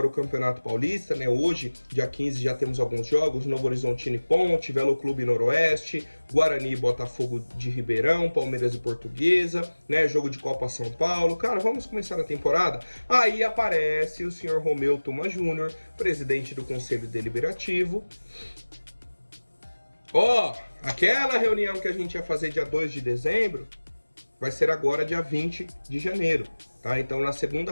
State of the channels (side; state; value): both; inverted; correlation -1.00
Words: o Campeonato Paulista, né? Hoje, dia 15, já temos alguns jogos, Novo Horizontino e Ponte, Velo Clube Noroeste, Guarani e Botafogo de Ribeirão, Palmeiras e Portuguesa, né? Jogo de Copa São Paulo. Cara, vamos começar a temporada? Aí aparece o senhor Romeu Tuma Júnior, presidente do Conselho Deliberativo. Aquela reunião que a gente ia fazer dia 2 de dezembro vai ser agora dia 20 de janeiro, tá? Então, na